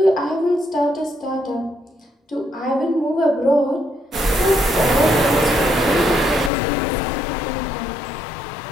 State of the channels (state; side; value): drops out; right; at 6.5 s